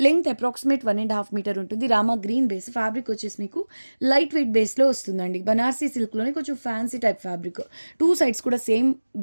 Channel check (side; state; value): both; inverted; correlation -1.00